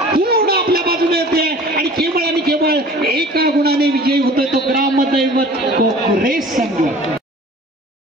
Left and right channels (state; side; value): normal; both; correlation 0.45